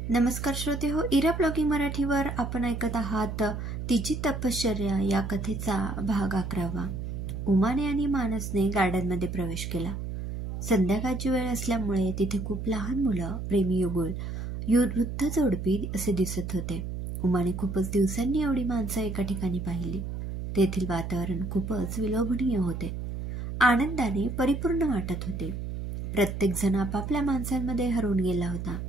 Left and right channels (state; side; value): noise; right; hum, 5 dB below the sound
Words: नमस्कार श्रोते हो, इरा ब्लॉगिंग मराठीवर आपण ऐकत आहात तिची तपश्चर्या या कथेचा भाग 11वा। उमाने आणि मानसने गार्डनमध्ये प्रवेश केला। संध्याकाळची वेळ असल्यामुळे तिथे खूप लहान मुलं, प्रेमी युगुल, वृद्ध जोडपी असे दिसत होते। उमाने खूपच दिवसांनी एवढी माणसं एका ठिकाणी पाहिली। तेथील वातावरण खूपच विलोभनीय होते, आनंदाने परिपूर्ण वाटत होते। प्रत्येक जण आपापल्या माणसांमध्ये हरवून गेला होता।